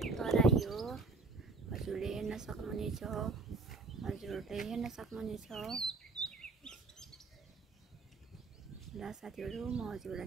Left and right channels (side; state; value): left; quieter; 3.8 dB